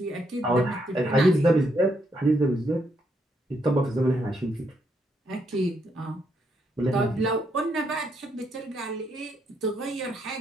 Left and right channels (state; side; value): normal; both; correlation 0.76